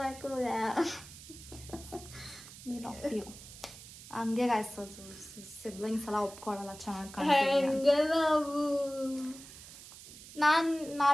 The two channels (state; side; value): noise; right; hiss, 16 dB below the sound